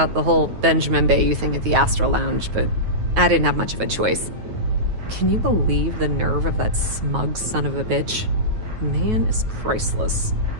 the whole Benjamin Bayou thing at the Astral Lounge, but I didn't have much of a choice. Can you believe the nerve of that smug son of a bitch? The man is priceless.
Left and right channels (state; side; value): late; left; 9.3 ms